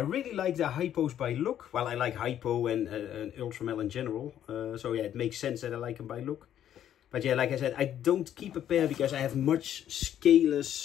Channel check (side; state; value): right; quieter; 10.6 dB